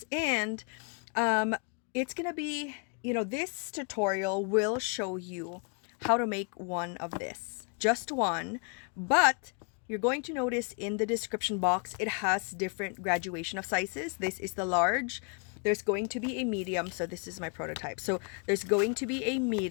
and it's gonna be, this tutorial will show you how to make one of this, just one, but you're going to notice in the description box it has different graduation of sizes. This is the large. There's going to be a medium, so this is my prototype. So there's going to be a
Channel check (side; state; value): right; quieter; 38.1 dB